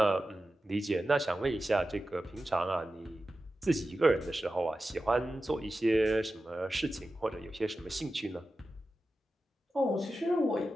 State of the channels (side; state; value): both; normal; correlation 0.93